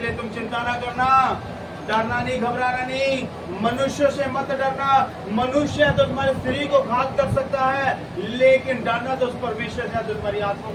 तुम चिंता ना करना, डरना नहीं, घबराना नहीं, मनुष्य से मत डरना। मनुष्य तो तुम्हारे शरीर को घात कर सकता है, लेकिन डरना तो उस परमेश्वर से जो तुम्हारी आत्मा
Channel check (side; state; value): both; identical; correlation 1.00